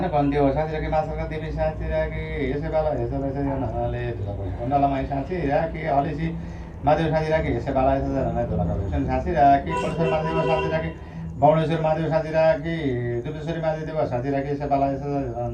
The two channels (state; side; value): identical; both; correlation 1.00